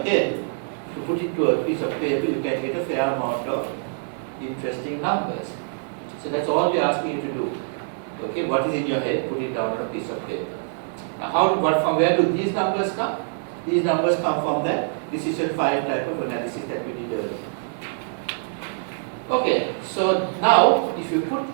to put it to a piece of paper, you can get a fair amount of interesting numbers. So that's all we're asking you to do. Okay, what is in your head, put it down on a piece of paper. Now from where do these numbers come? These numbers come from that decision 5 type of analysis that we did earlier. Okay, so now if you put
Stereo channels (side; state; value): left; silent; 62 dB below the other